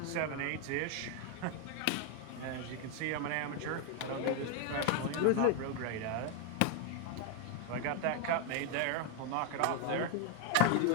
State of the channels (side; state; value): both; different; correlation 0.01